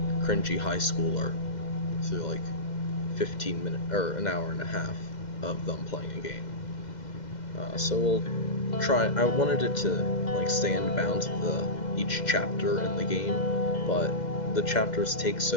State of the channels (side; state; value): right; late; 2.0 ms